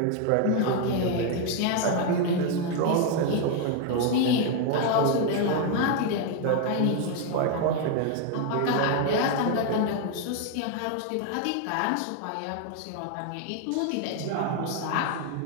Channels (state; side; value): different; both; correlation 0.01